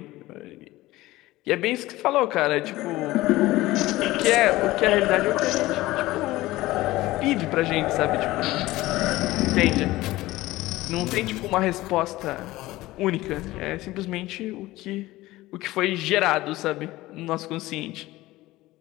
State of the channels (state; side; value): quieter; right; 17.9 dB